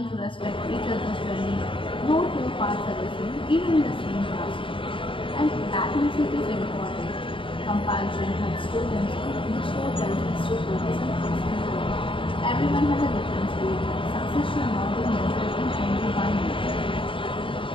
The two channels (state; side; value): late; right; 0.25 ms